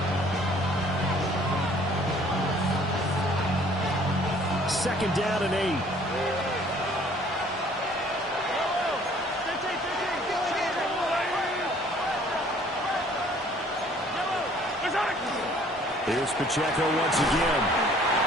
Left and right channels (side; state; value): both; normal; correlation 0.57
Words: Second down and 8. Here's Pacheco once again.